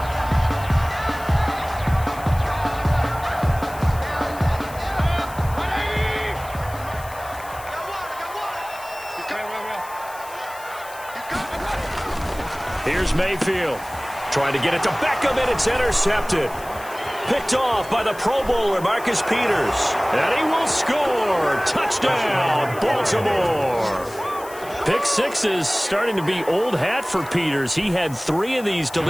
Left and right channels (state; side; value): noise; left; hiss, 18 dB below the sound